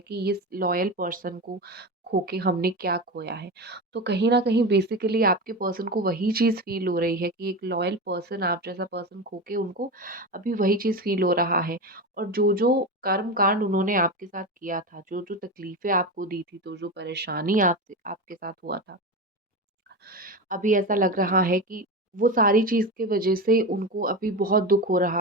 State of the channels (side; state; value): both; normal; correlation 0.22